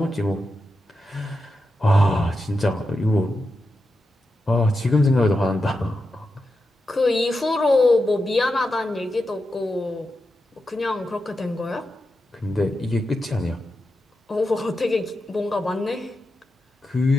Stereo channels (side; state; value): both; normal; correlation 0.89